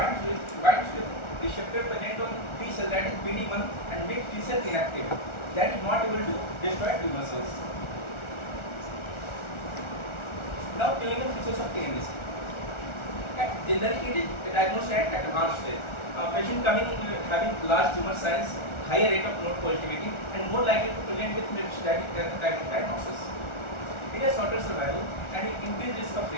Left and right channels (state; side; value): late; right; 1.4 ms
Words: with receptor present on T cell, that is PD-1, and make T cell inactive. That is not able to destroy tumor cells. Now, clinical features of TNBC. Generally, it is diagnosed at advanced stage. Patient coming having large tumor size, higher rate of node positivity, and more likely to present with metastatic diagnosis. It has shorter survival and it increased risk of